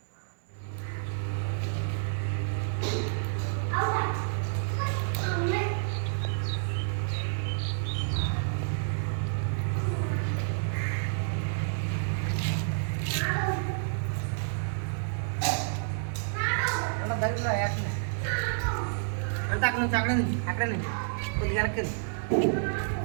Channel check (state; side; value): silent; left; digital silence